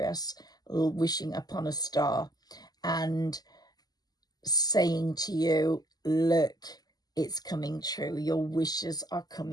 wishing upon a star and saying to you, look, it's coming true. Your wishes are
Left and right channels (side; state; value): right; late; 0.19 ms